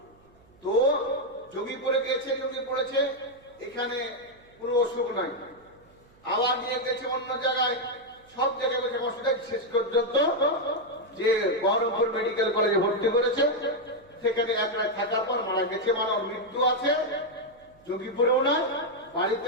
তো যোগীপুরে গেছে, যোগী পড়েছে, এখানে কোনো অসুখ নাই, আবার নিয়ে গেছে অন্য জায়গায়, সব জায়গায় বসে অসুবিধা, শেষ পর্যন্ত যে বহরমপুর মেডিকেল কলেজে ভর্তি করেছে, সেখানে এক রাত থাকার পর মারা গেছে। মানে ওর মৃত্যু আছে যোগীপুরেও না,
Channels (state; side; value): noise; right; hum, 30 dB below the sound